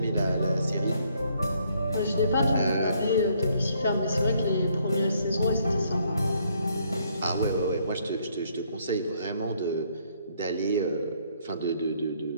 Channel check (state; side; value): inverted; both; correlation -0.68